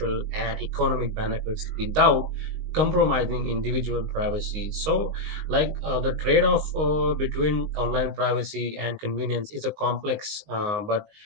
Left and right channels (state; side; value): late; left; 19 ms